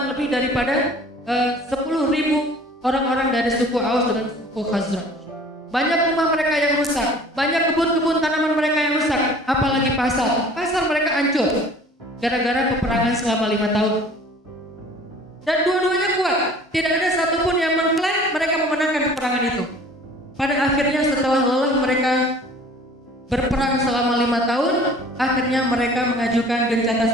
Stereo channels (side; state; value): both; normal; correlation 0.48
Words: lebih daripada 10.000 orang-orang dari suku Aus dengan suku Khazraj. Banyak rumah mereka yang rusak, banyak kebun-kebun tanaman mereka yang rusak, apalagi pasar mereka hancur gara-gara peperangan selama 5 tahun. Dan dua-duanya kuat, tidak ada satupun yang mengklaim mereka memenangkan peperangan itu. Pada akhirnya setelah lelah mereka berperang selama 5 tahun, akhirnya mereka mengajukan gencatan